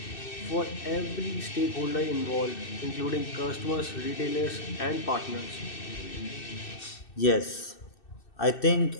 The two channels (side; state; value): right; late; 2.6 ms